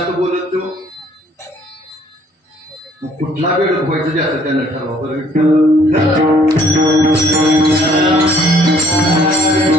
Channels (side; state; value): both; normal; correlation 0.60